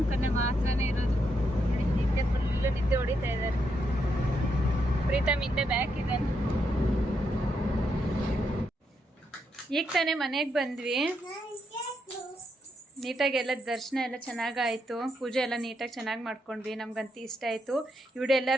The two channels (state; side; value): normal; both; correlation 0.80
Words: ಕಣ್ಣೆ ಮಾತ್ರನೇ ಇರೋದು. ನಿದ್ದೆ ಫುಲ್ ನಿದ್ದೆ ಹೊಡಿತಾ ಇದ್ದಾರೆ. ಪ್ರೀತಮ್ ಹಿಂದೆ ಬ್ಯಾಕ್ ಇದ್ದಾನೆ. ಈಗ ತಾನೇ ಮನೆಗೆ ಬಂದ್ವಿ. ನೀಟಾಗಿ ಎಲ್ಲ ದರ್ಶನ ಎಲ್ಲ ಚೆನ್ನಾಗಾಯಿತು, ಪೂಜೆ ಎಲ್ಲ ನೀಟಾಗಿ ಚೆನ್ನಾಗಿ ಮಾಡ್ಕೊಂಡ್ವಿ. ನಮ್ಗಂತೂ ಇಷ್ಟ ಆಯಿತು. ಈ ವಿಡಿಯೋ